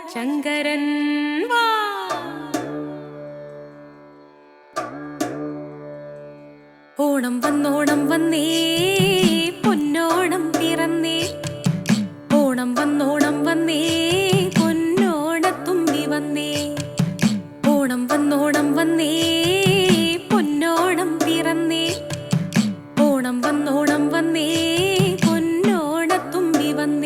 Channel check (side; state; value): both; identical; correlation 1.00